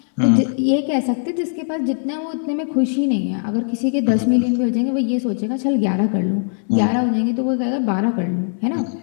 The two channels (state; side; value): silent; right; 66 dB below the other